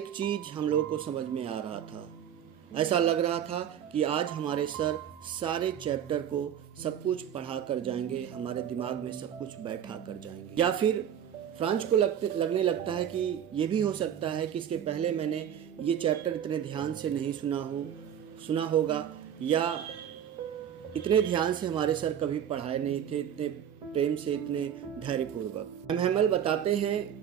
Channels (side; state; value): left; quieter; 9.4 dB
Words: चीज हम लोगों को समझ में आ रहा था। ऐसा लग रहा था कि आज हमारे सर सारे चैप्टर को सब कुछ पढ़ा कर जाएंगे, हमारे दिमाग में सब कुछ बैठा कर जाएंगे। या फिर फ्रांज को लगने लगता है कि ये भी हो सकता है कि इसके पहले मैंने ये चैप्टर इतने ध्यान से नहीं सुना होगा, या इतने ध्यान से हमारे सर कभी पढ़ाए नहीं थे, इतने प्रेम से, इतने धैर्यपूर्वक। एम हेमल बताते